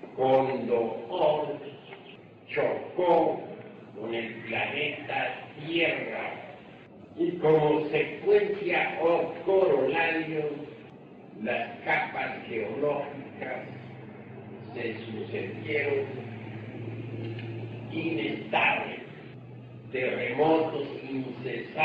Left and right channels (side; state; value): both; identical; correlation 1.00